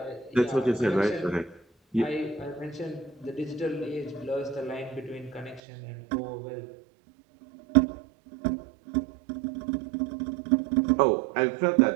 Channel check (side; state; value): left; drops out; at 5.6 s